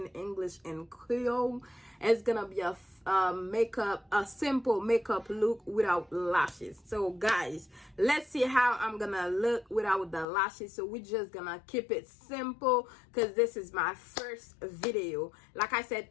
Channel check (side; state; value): right; drops out; at 10.2 s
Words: English and Creole. It's gonna be a simple makeup look without lashes. So guys, let's see how I'm gonna look without the lashes. So we're just gonna keep it simple because this is my first video. Like I said,